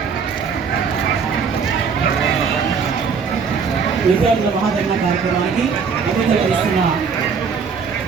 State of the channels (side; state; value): left; quieter; 5.8 dB